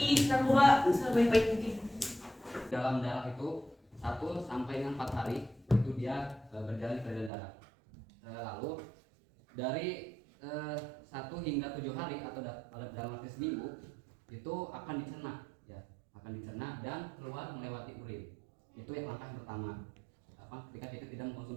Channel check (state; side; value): drops out; left; at 7.3 s